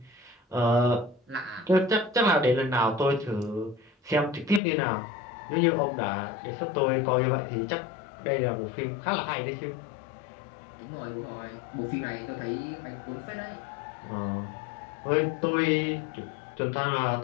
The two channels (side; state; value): right; drops out; at 4.6 s